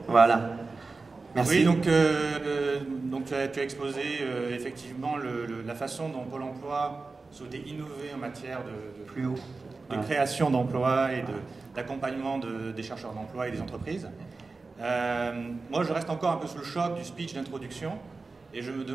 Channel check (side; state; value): left; quieter; 3.9 dB